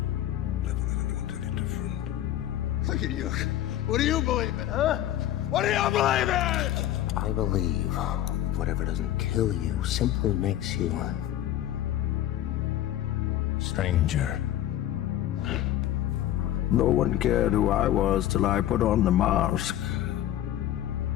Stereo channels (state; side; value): quieter; right; 12.6 dB